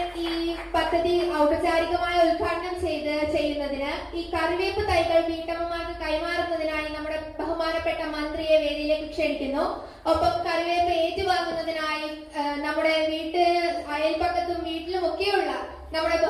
ഈ പദ്ധതി ഔപചാരികമായി ഉദ്ഘാടനം ചെയ്യുന്നതിന് ഈ കറിവേപ്പ് തൈകൾ വീട്ടമ്മമാർക്ക് കൈമാറുന്നതിനായി നമ്മുടെ ബഹുമാനപ്പെട്ട മന്ത്രിയെ വേദിയിലേക്ക് ക്ഷണിക്കുന്നു. ഒപ്പം കറിവേപ്പ് ഏറ്റുവാങ്ങുന്നതിനായി നമ്മുടെ അയൽപക്കത്തും വീട്ടിലും ഒക്കെയുള്ള നമ്മുടെ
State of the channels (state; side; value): identical; both; correlation 1.00